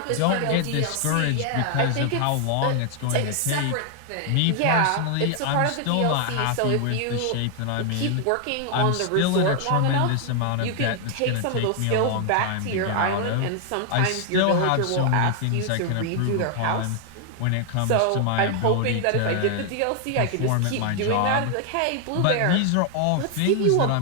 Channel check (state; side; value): different; both; correlation 0.00